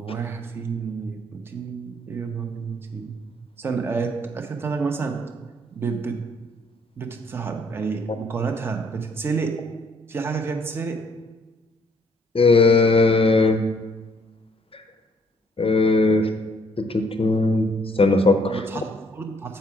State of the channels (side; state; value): both; normal; correlation 0.65